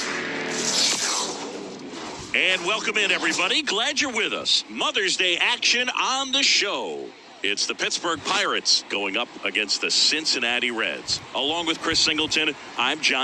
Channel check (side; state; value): both; identical; correlation 1.00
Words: And welcome in, everybody. Glad you're with us. Mother's Day action on the show. It's the Pittsburgh Pirates going up against the Cincinnati Reds. Along with Chris Singleton, I'm